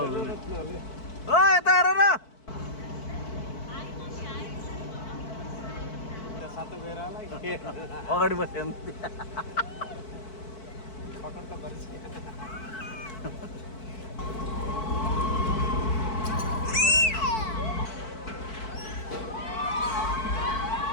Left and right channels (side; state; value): right; late; 4.6 ms